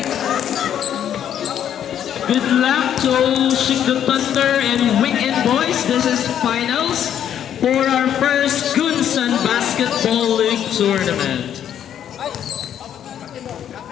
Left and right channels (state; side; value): quieter; right; 9.8 dB